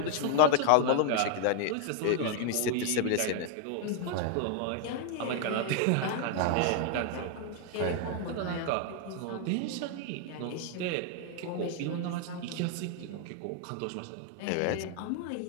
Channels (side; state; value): both; different; correlation 0.00